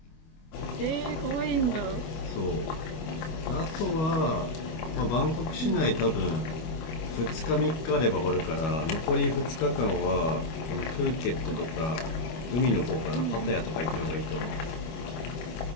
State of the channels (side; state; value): right; late; 25 ms